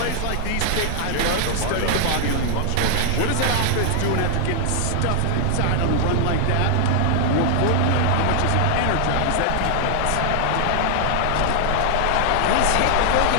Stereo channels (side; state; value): both; different; correlation 0.00